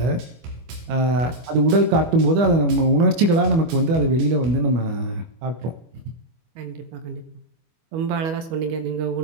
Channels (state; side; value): late; left; 25 ms